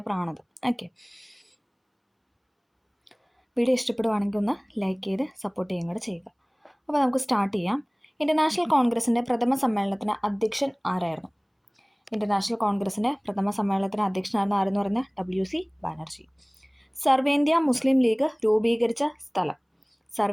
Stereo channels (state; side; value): identical; both; correlation 1.00